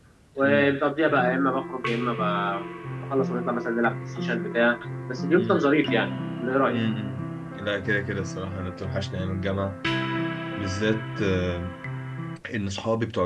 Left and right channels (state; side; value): identical; both; correlation 1.00